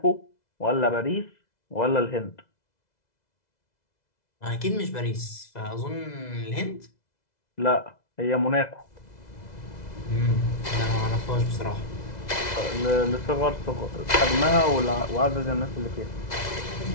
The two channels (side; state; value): right; late; 2.0 ms